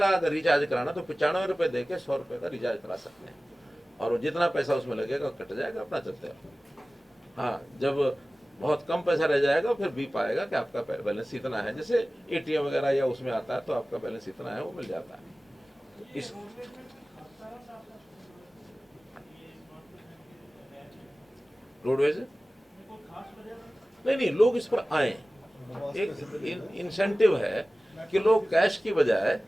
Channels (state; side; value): normal; both; correlation 0.97